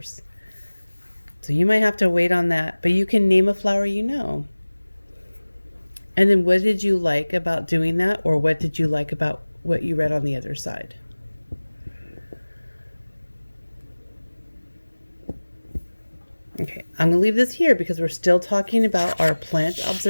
So you might have to wait on that, but you can name a flower you know. And then what did you like about doing that, or what did you like about what you read on the other side? Okay, I'm going to leave this here because we're still talking about our plant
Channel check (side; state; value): both; inverted; correlation -1.00